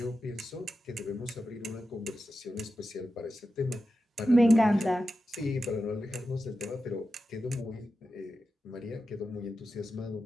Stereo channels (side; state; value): both; normal; correlation 0.91